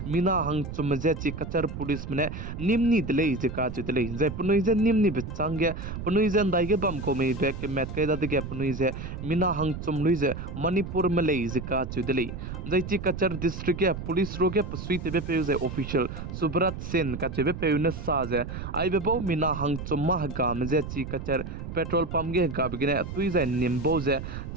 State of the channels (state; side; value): noise; right; rumble, 8 dB below the sound